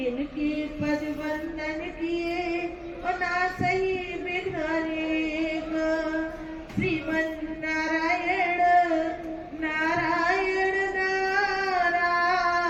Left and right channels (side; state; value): both; identical; correlation 1.00